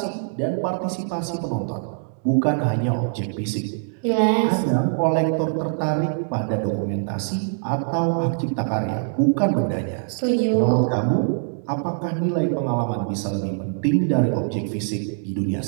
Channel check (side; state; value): left; silent; digital silence